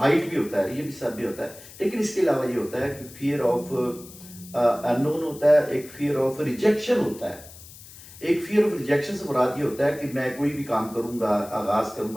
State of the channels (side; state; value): left; noise; hiss, 18 dB below the sound